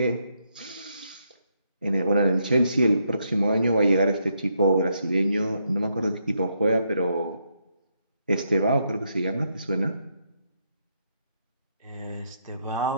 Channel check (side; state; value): both; inverted; correlation -0.78